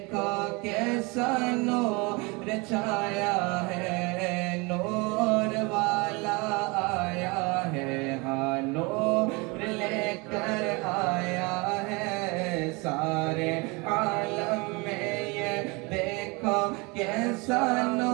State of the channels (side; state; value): left; quieter; 27.5 dB